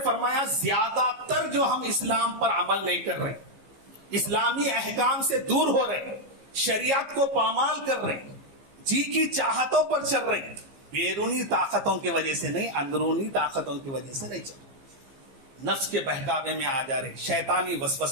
فرمایا زیادہ تر جو ہم اسلام پر عمل نہیں کر رہے, اسلامی احکام سے دور ہو رہے, شریعت کو پامال کر رہے, جی کی چاہتوں پر چل رہے, بیرونی طاقتوں کی وجہ سے نہیں, اندرونی طاقتوں کی وجہ سے نہیں چل رہے, نفس کے بہکاوے میں آ جا رہے, شیطانی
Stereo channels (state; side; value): late; left; 15 ms